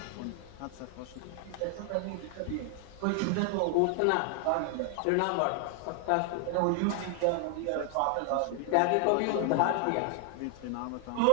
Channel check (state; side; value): different; both; correlation 0.00